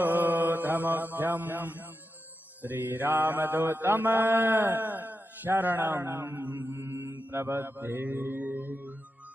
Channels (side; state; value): both; normal; correlation 0.89